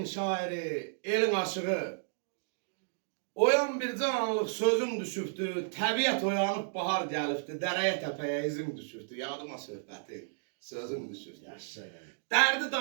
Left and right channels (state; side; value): silent; left; digital silence